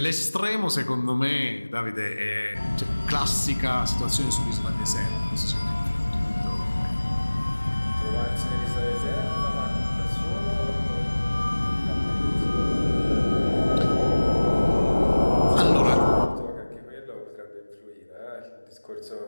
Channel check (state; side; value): inverted; both; correlation -1.00